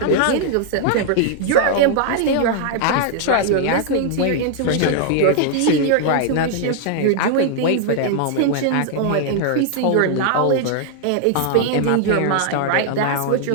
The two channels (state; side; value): different; both; correlation -0.01